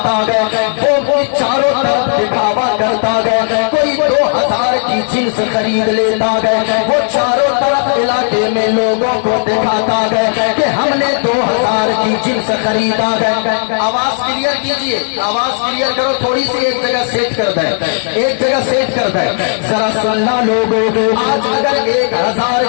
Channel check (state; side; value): silent; right; 60 dB below the other